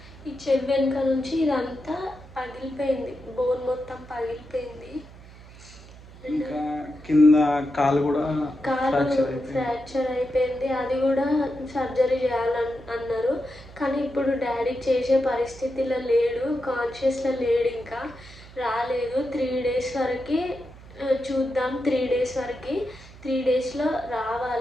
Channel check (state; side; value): noise; right; hum, 19 dB below the sound